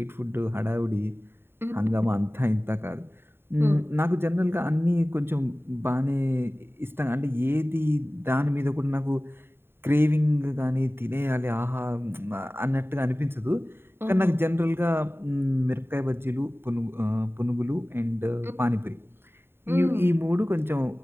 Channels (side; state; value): left; late; 0.11 ms